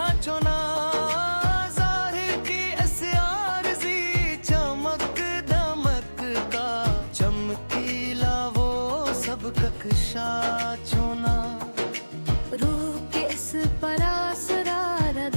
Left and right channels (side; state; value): both; inverted; correlation -1.00